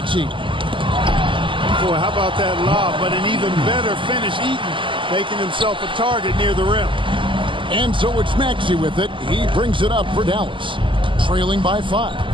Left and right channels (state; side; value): late; left; 0.25 ms